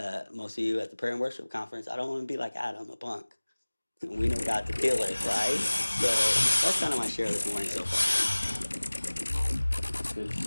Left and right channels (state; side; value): inverted; both; correlation -1.00